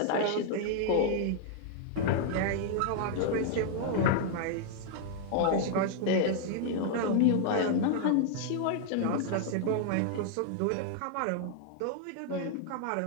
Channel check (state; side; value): different; both; correlation -0.01